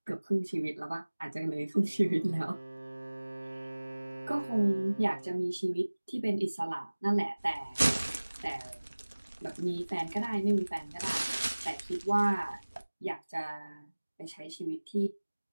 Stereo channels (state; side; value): inverted; both; correlation -1.00